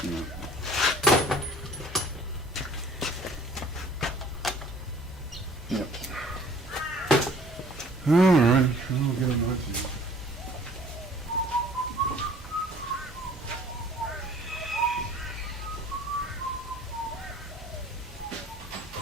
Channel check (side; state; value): both; normal; correlation 0.53